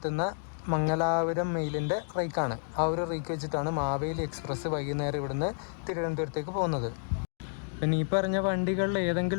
മംഗലാപുരം മെയിലിൻ്റെ റേക്കാണ്. ആ ഒരു റേക്ക് വെച്ചിട്ടാണ് മാവേലി എക്സ്പ്രസ് വൈകുന്നേരം ഇവിടുന്ന് തിരുവനന്തപുരത്തേക്ക് പോകുന്നത്. പിന്നെ ഈ പറഞ്ഞ വണ്ടികളിൽ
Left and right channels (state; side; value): silent; right; digital silence